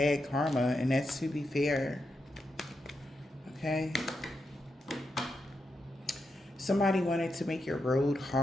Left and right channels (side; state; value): both; normal; correlation 0.85